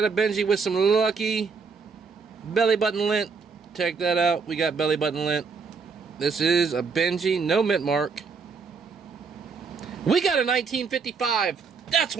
a Benji with some lucky belly button lint. Check that out. We got belly button lint. This is a Benji, no mint mark. We got a 1955. That's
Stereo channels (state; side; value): quieter; left; 5.1 dB